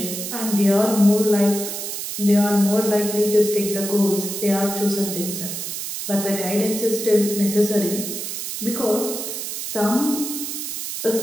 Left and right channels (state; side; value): noise; right; hiss, 5 dB below the sound